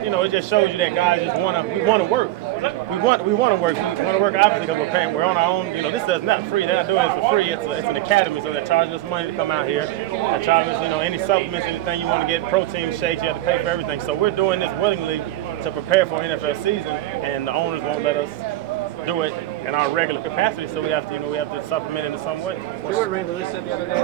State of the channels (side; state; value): left; quieter; 15.3 dB